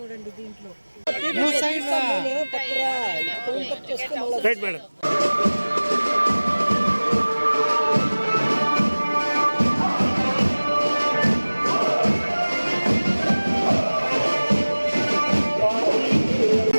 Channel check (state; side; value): inverted; both; correlation -1.00